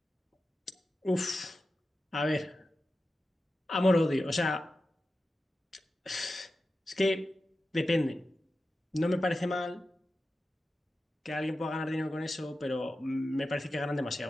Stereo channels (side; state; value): both; normal; correlation 0.93